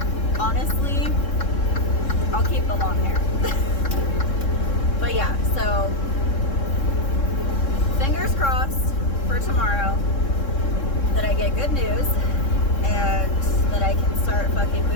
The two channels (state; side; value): late; right; 3.7 ms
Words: honestly, I'll keep the long hair. But yeah, so, fingers crossed for tomorrow that I get good news and that I can start fucking